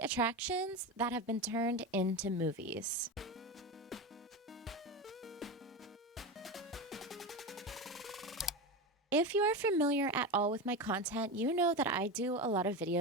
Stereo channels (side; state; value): both; normal; correlation 0.20